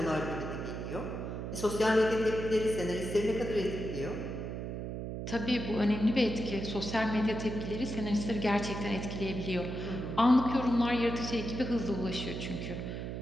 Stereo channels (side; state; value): right; noise; hum, 5 dB below the sound